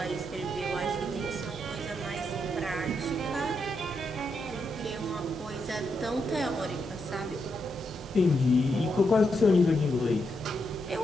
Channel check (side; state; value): both; normal; correlation 0.81